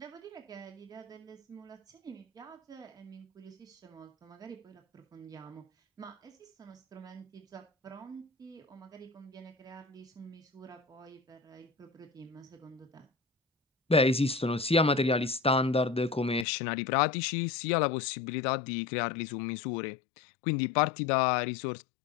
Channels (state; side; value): drops out; right; at 16.4 s